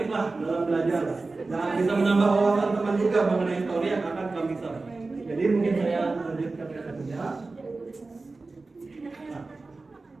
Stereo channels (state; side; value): quieter; left; 3.6 dB